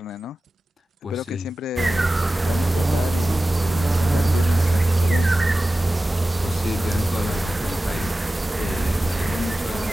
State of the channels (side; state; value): both; normal; correlation 0.96